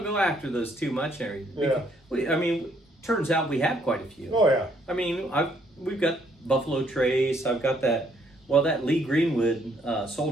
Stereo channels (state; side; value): normal; both; correlation 0.68